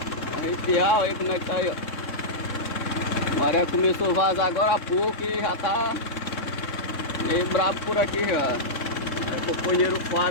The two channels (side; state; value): right; late; 3.6 ms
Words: arrepiar, aí como é que tá aí, ó. A maré começou a vazar agora há pouco e já tá meio brabo por aqui já. Aí o companheiro